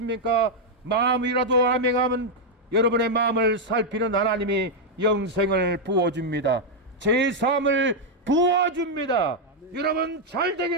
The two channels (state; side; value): normal; both; correlation -0.01